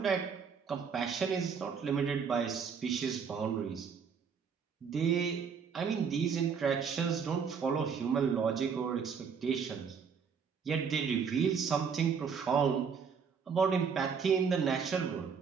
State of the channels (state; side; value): quieter; left; 6.3 dB